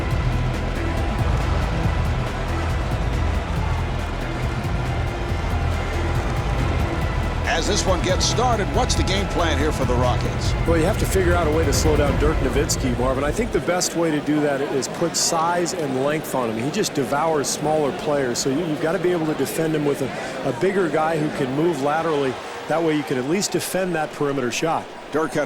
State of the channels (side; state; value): both; identical; correlation 1.00